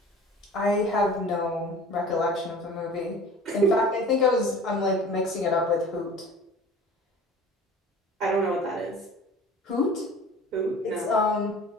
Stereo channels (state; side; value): normal; both; correlation 0.42